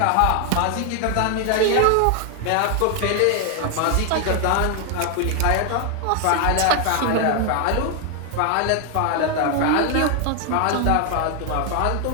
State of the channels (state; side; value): different; both; correlation 0.00